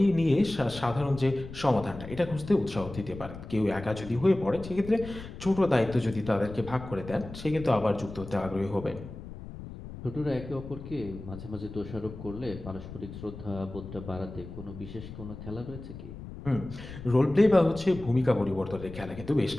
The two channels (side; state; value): left; noise; rumble, 12 dB below the sound